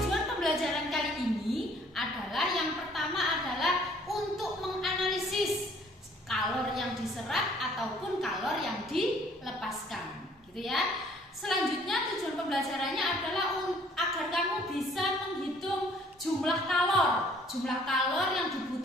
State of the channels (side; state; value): both; normal; correlation 0.59